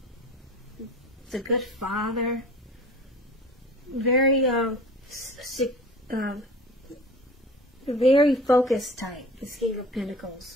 It's a good father, very very focused type, the King of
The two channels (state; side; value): normal; both; correlation 0.41